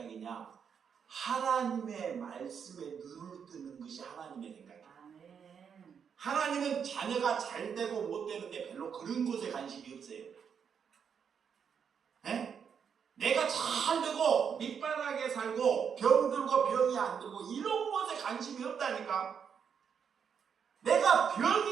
하나님의 말씀에 눈을 뜨는 것이 하나님의 생각이에요. 하나님은 자녀가 잘 되고 못 되는데 별로 그런 것에 관심이 없어요. 네? 내가 잘 되고 밑바닥에 살고 병들고 병이 안 들고 이런 것에 관심이 없다니까. 내가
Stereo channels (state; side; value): quieter; left; 7.1 dB